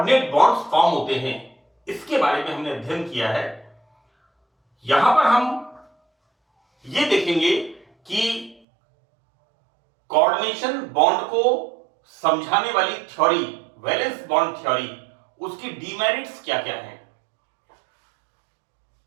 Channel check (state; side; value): drops out; left; at 8.6 s